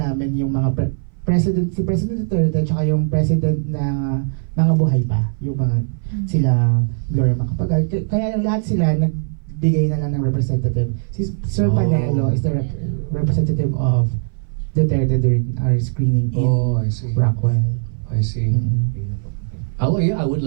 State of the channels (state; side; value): silent; left; 61 dB below the other